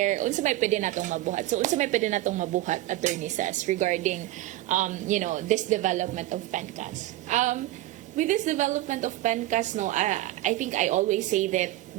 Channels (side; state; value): left; quieter; 15.8 dB